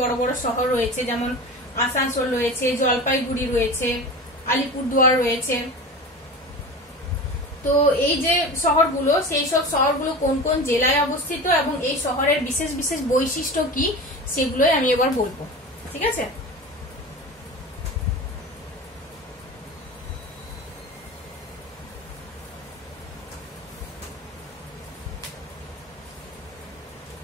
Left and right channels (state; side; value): normal; both; correlation 0.31